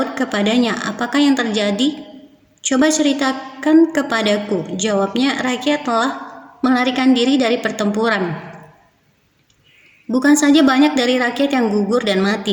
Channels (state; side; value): identical; both; correlation 1.00